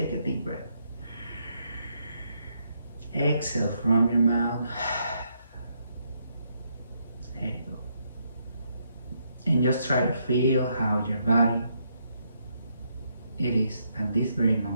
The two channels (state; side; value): inverted; both; correlation -0.76